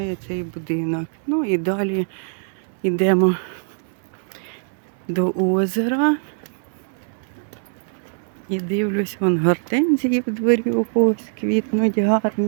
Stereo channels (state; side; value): silent; left; 64 dB below the other